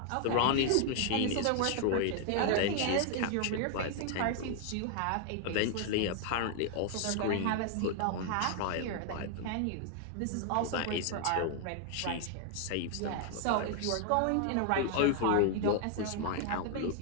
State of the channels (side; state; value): both; different; correlation 0.00